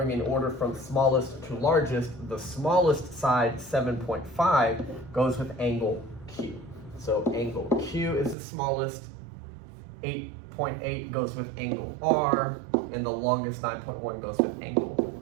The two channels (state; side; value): drops out; left; at 8.3 s